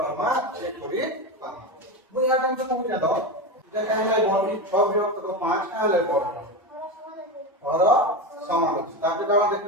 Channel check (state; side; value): normal; both; correlation 0.19